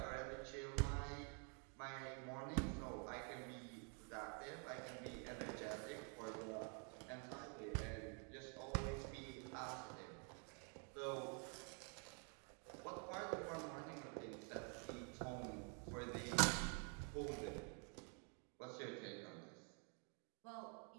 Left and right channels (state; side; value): quieter; left; 39.3 dB